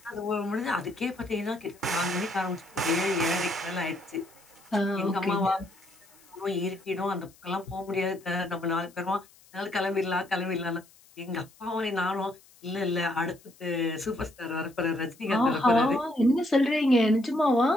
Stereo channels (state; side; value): noise; left; hiss, 27 dB below the sound